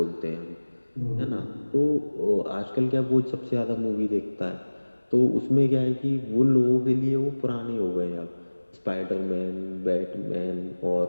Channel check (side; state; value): both; inverted; correlation -1.00